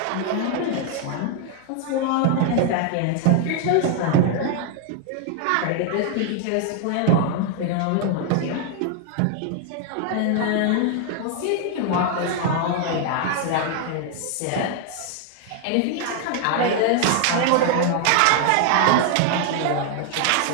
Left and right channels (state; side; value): different; both; correlation 0.00